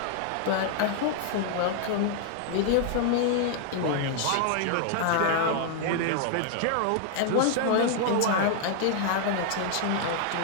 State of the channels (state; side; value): different; both; correlation 0.00